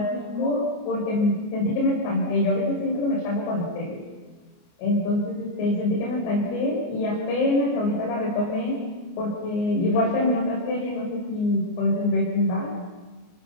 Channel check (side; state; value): right; late; 29 ms